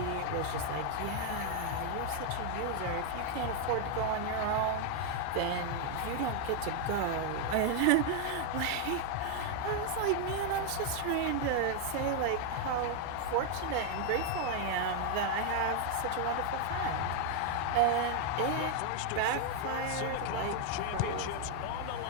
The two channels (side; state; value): both; different; correlation 0.00